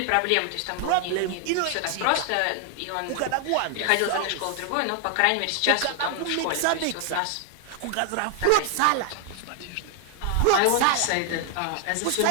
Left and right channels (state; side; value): different; both; correlation 0.00